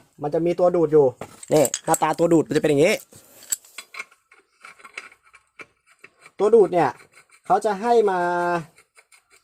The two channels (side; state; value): both; identical; correlation 1.00